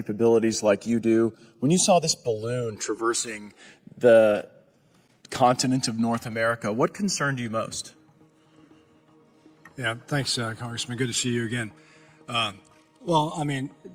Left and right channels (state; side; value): identical; both; correlation 1.00